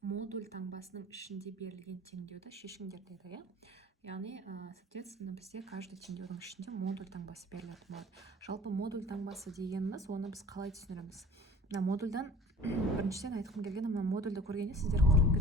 таңбасының ішінде берілген теңдеуді шешіңдер деді, иә? Яғни, соответственно, бізде каждый теңдеудің ішінде модуль таңбасы берілетін болады. Жалпы модуль таңбасы дегеніміз, оны біз қалай түсіндіреміз? Мына модульдан біріншіден айтқым келген, мына модульді көргенде сіздер құрып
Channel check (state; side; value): normal; both; correlation 0.44